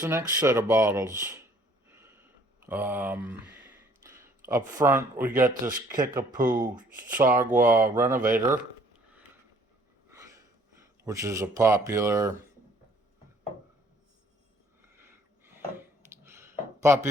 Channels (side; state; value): both; normal; correlation 0.59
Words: the next set of bottles. Up front, we got this Kickapoo Sagwa Renovator, which is a popular